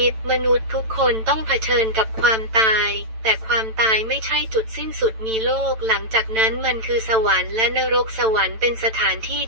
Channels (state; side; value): late; left; 9.0 ms